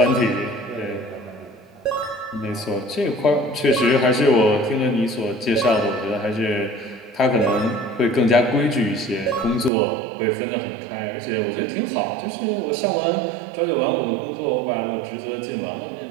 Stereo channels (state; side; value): drops out; left; at 9.7 s